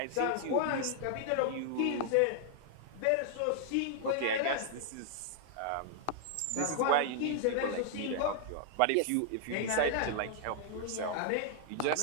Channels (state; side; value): different; both; correlation -0.01